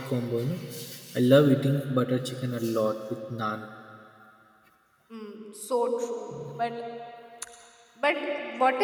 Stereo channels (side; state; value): both; identical; correlation 1.00